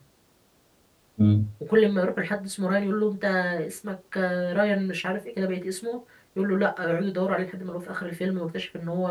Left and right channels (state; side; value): identical; both; correlation 1.00